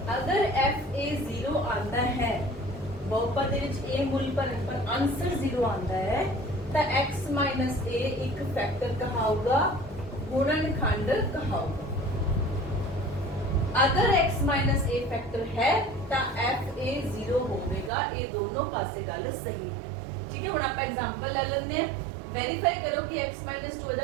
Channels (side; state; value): left; drops out; at 17.9 s